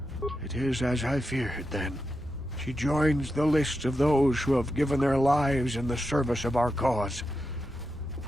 It is as I feared, then. She joins the list of those who have given their lives in the service of our cause.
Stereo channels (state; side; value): normal; both; correlation 0.87